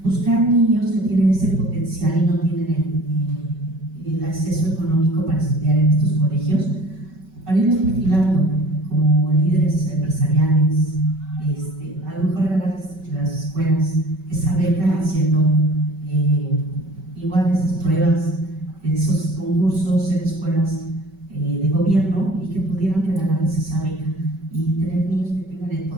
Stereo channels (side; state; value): left; late; 5.2 ms